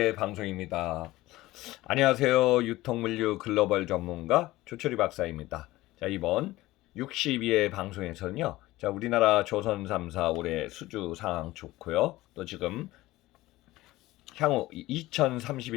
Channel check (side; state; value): right; quieter; 17.9 dB